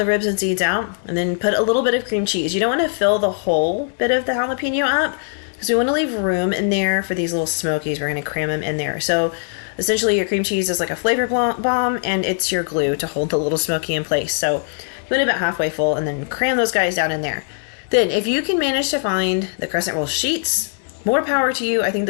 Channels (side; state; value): right; silent; digital silence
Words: ribs and seeds out, and then put a little bit of cream cheese. You don't want to fill the whole bit of the jalapeno up, because we want to leave room in there for these little smokies. We're going to cram them in there. So essentially your cream cheese is like a flavor bomb, and it's your glue to hold the little smoky in place. So you want it about halfway full, and then cram those guys down in there. Then if you can manage to find the crescent roll sheets, more power to you. I think